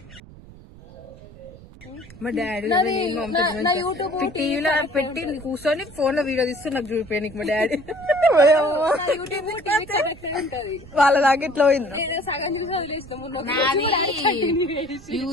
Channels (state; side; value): noise; right; rumble, 19 dB below the sound